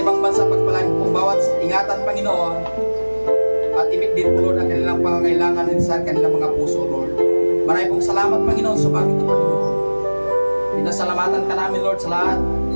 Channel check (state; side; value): inverted; both; correlation -1.00